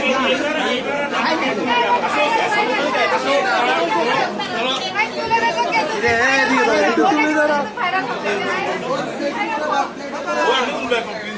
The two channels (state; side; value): identical; both; correlation 1.00